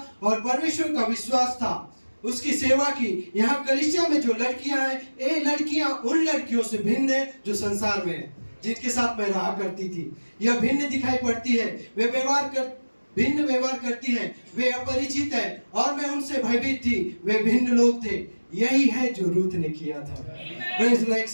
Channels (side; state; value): both; inverted; correlation -1.00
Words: और परमेश्वर का विश्वास था, उसकी सेवा की। यहाँ कलीसिया में जो लड़कियां हैं, ये लड़कियां उन लड़कियों से भिन्न है जो संसार में है, जिनके साथ मैं रहा करती थी। यह भिन्न दिखाई पड़ती है। वे भिन्न व्यवहार करती हैं, वे अपरिचित है और मैं उनसे भयभीत थी। वे भिन्न लोग थे। यही है जो रूथ ने किया था। एक